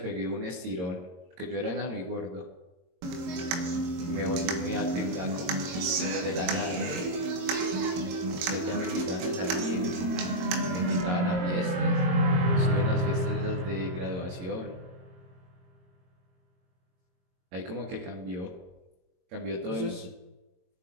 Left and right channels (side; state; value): left; late; 22 ms